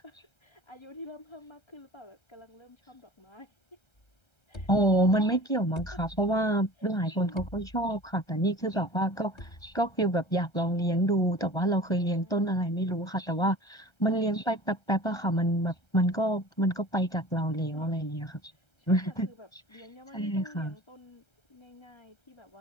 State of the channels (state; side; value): late; right; 1.3 ms